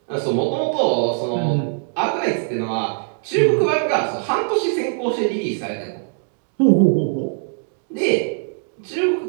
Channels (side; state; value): left; silent; 60 dB below the other